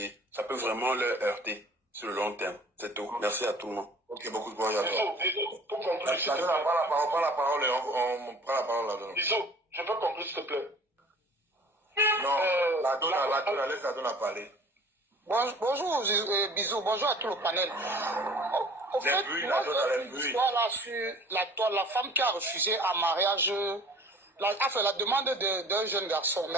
ça peut vraiment leur heurter sur le long terme. C'est tout. Merci à tout le monde. Ok, beaucoup de bon à toi. Pour conclure, s'il te plaît. On prend la parole et on prend la parole là-dedans. Bisous, je peux conclure, s'il te plaît. Non, la donne, laisse la donne à parler. Bonjour, bisous, bonjour à tout le panel. Au fait, moi, j'ai une histoire là sur la femme qui a refusé un mariage, la demande d'un jeune garçon.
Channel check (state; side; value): normal; both; correlation 0.48